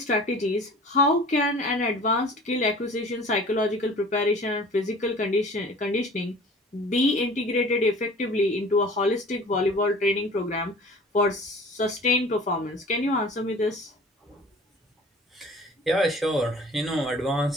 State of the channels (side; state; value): both; normal; correlation 0.44